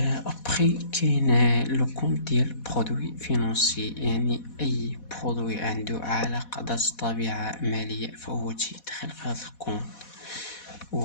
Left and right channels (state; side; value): late; right; 4.1 ms